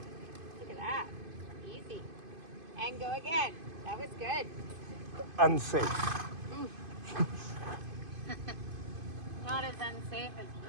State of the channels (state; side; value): late; left; 2.5 ms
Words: Look at that. Easy. And go again. That was good. Unsafe. Not as unsafe as